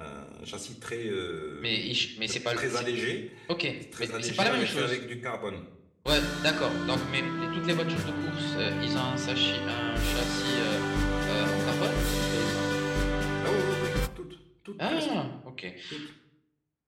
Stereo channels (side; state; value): both; identical; correlation 1.00